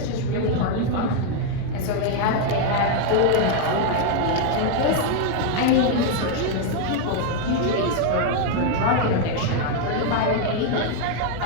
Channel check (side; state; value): both; different; correlation 0.01